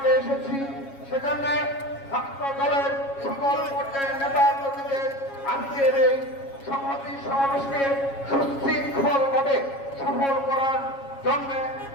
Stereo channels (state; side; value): late; right; 7.3 ms